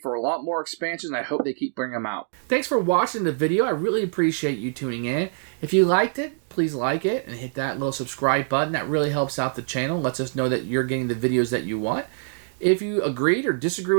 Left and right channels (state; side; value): silent; left; digital silence